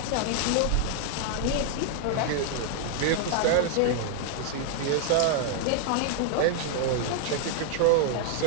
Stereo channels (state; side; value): different; both; correlation 0.00